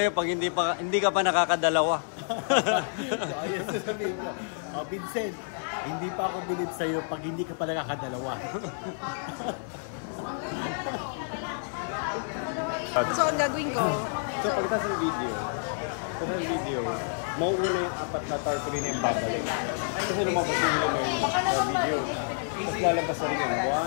pag hindi ka pa nakakadalawa? So ayun sasabihin ko. Vincent, hindi pa ako believe sa'yo pag hindi ka pa nakakadalawa. So, ang gagawin ko, So pagkatapos ng video, mauuna yung apat na tarpaulin na yung babalik. Kasi lumabas yung sa video. Tapos lalabas na rin yun.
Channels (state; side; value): silent; right; 59 dB below the other